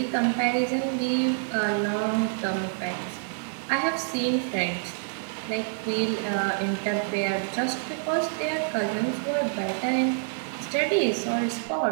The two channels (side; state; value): left; silent; digital silence